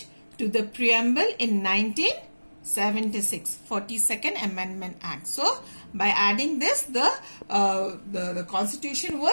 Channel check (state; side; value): inverted; both; correlation -1.00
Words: to the preamble in 1976, 42nd Amendment Act. So, by adding this, the constitution